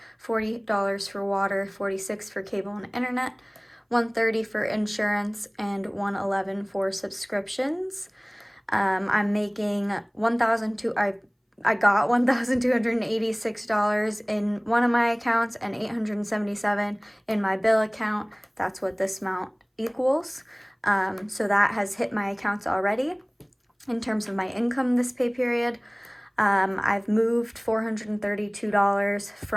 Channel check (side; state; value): both; identical; correlation 1.00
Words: $40 for water, $46 for cable and internet, $130 for insurance, and $111 for subscriptions. I'm making I got $1,286 in one of my accounts and $877 in my bill account. That's what this amount equals. So that has hit my accounts already. In terms of my income this pay period, I've moved $432